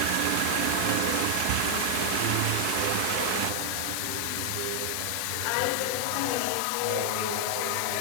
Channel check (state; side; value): different; both; correlation 0.00